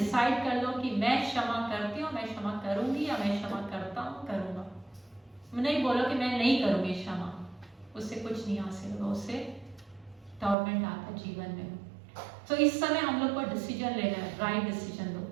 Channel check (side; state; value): left; drops out; at 10.6 s